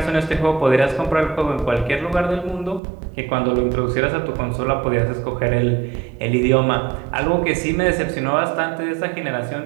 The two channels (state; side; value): drops out; left; at 2.8 s